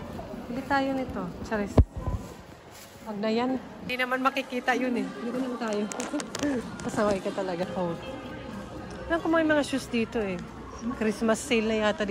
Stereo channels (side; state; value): both; identical; correlation 1.00